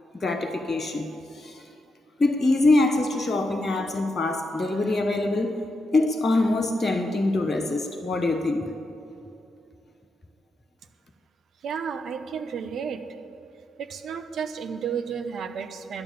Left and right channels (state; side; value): normal; both; correlation 0.84